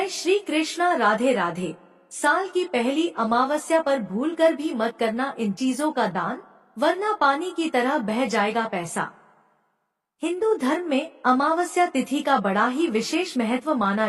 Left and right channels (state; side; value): identical; both; correlation 1.00